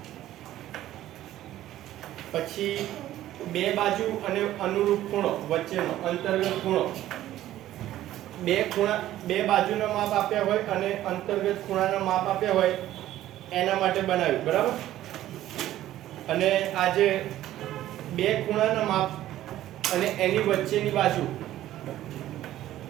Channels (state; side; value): quieter; left; 13.7 dB